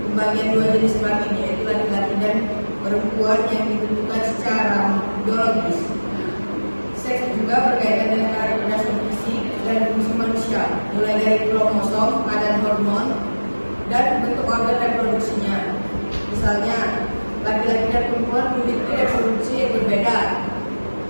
pembagian dua jenis kelamin, yaitu laki-laki dan perempuan, yang ditentukan secara biologis. Seks juga berkaitan dengan karakteristik fisik dan fungsi manusia, mulai dari kromosom, kadar hormon, dan bentuk organ reproduksinya. Misalnya, laki-laki dan perempuan memiliki reproduksi yang berbeda,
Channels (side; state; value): both; inverted; correlation -1.00